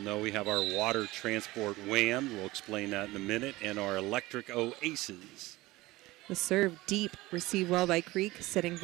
we have our water transport WHAM. We'll explain that in a minute. And our electric Oasis. The serve deep, received well by Creek, setting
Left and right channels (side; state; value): left; quieter; 19.4 dB